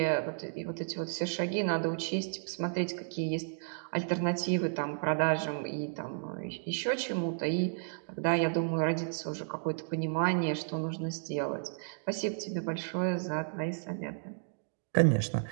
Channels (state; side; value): silent; left; digital silence